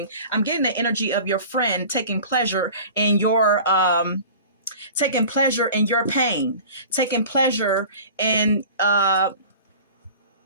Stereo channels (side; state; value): both; inverted; correlation -0.41